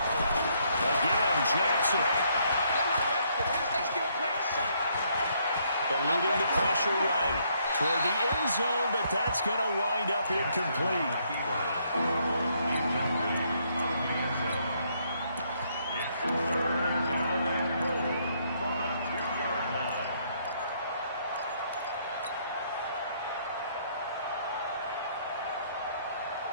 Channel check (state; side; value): inverted; both; correlation -0.70